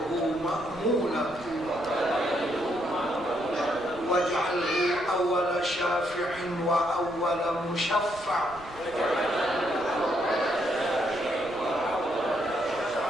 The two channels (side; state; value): right; noise; rumble, 20 dB below the sound